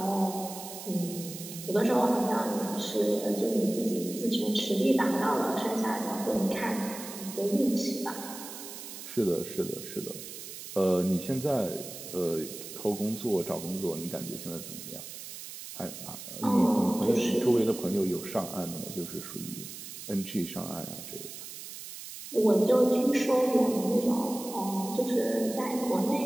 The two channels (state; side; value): noise; right; hiss, 11 dB below the sound